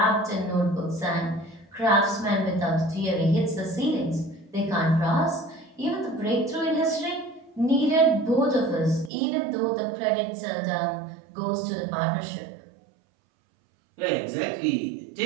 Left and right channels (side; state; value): left; drops out; at 9.1 s